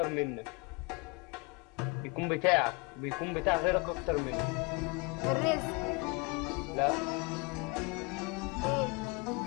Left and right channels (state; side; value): quieter; right; 29.5 dB